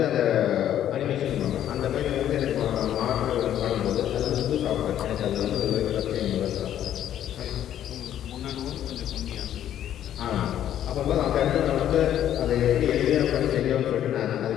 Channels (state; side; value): quieter; right; 11.0 dB